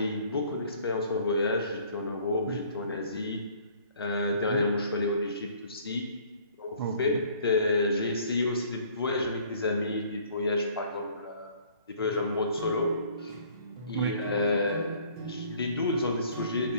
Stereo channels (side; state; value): both; inverted; correlation -0.56